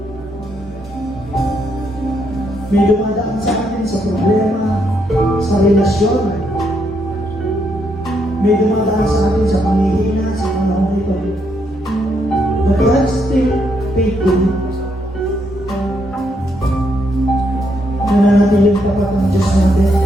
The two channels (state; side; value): normal; both; correlation 0.76